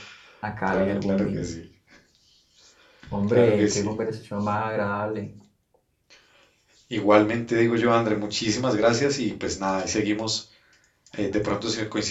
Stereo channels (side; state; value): both; identical; correlation 1.00